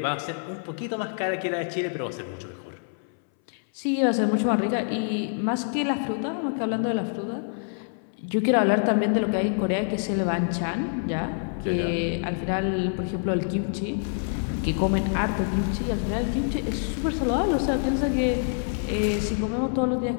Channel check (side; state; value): right; silent; 61 dB below the other